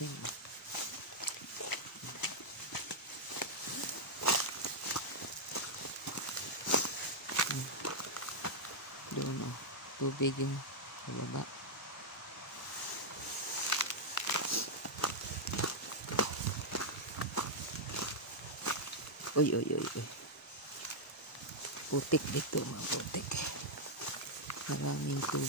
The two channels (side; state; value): both; normal; correlation -0.04